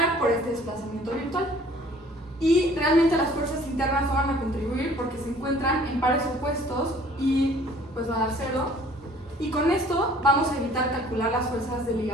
por este desplazamiento virtual. Y realmente las fuerzas internas no van a contribuir porque se encuentran en pares opuestos y pues va a dar 0. Y con esto vamos a evitar calcular las fuerzas de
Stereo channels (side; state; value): both; normal; correlation 0.54